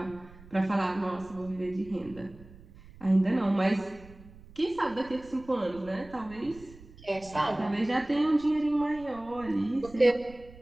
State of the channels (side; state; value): right; noise; rumble, 20 dB below the sound